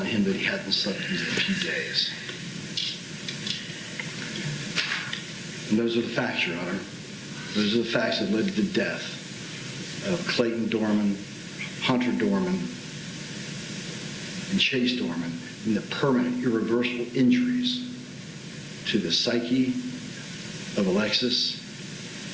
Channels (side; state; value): both; identical; correlation 1.00